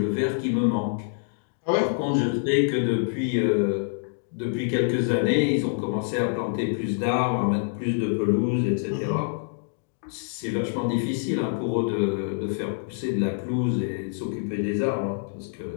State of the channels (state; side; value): silent; right; digital silence